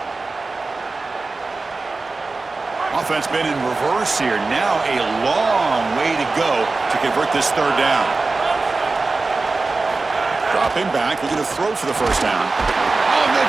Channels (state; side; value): quieter; left; 3.7 dB